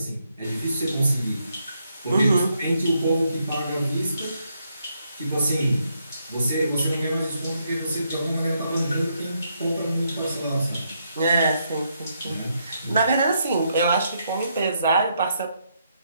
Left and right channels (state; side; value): inverted; both; correlation -0.77